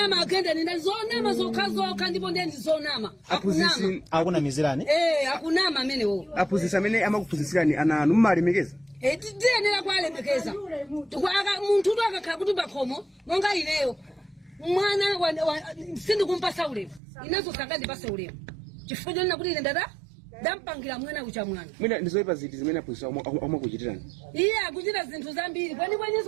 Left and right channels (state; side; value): drops out; left; at 17.0 s